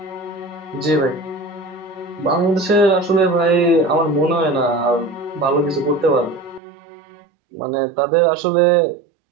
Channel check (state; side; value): drops out; left; at 6.6 s